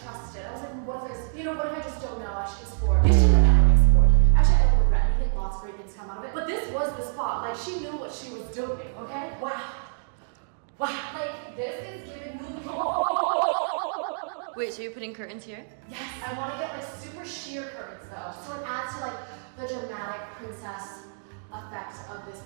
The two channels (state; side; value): silent; left; digital silence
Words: trust it. I was like, what if there's, you know, what if I just don't know? I should explore. I should have never explored. Actually, I don't regret anything. Lots of great things come out of it. But this was the spot. Like, she knew what she was doing, okay? Wow. Like, this is giving New York. Wait, so you're putting curtains here? Yes, I want to get like super sheer curtains though. So it adds to like the dramatic princess effect of this